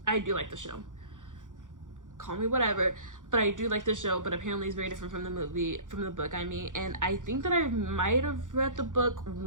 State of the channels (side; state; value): left; late; 0.87 ms